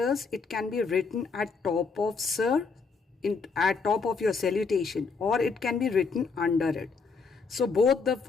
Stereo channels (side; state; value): right; quieter; 4.8 dB